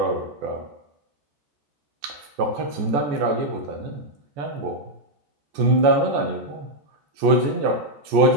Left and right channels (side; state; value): left; late; 14 ms